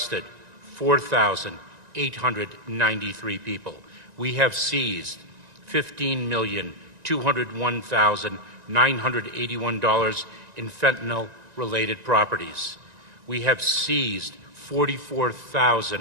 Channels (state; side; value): late; left; 1.9 ms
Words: 4,893 people. We have seized $15,201,981 in fentanyl-related properties. We have seized